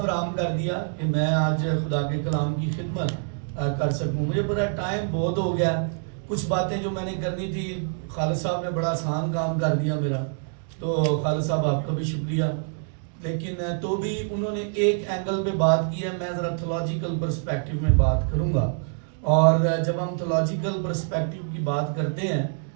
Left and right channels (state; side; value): silent; left; 61 dB below the other